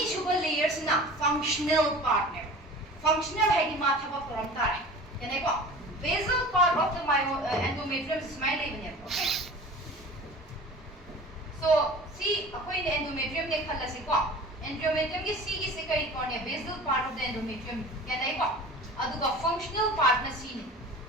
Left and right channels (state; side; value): normal; both; correlation 0.40